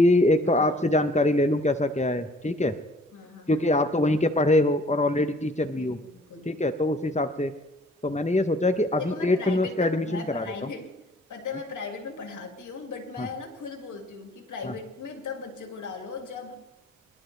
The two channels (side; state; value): both; normal; correlation 0.56